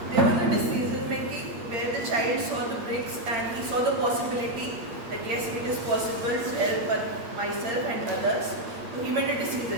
There was a decision making where the child saw the bricks and he saw the possibility that yes, it is possible to help myself and others. So he made a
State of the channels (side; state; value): left; late; 8.7 ms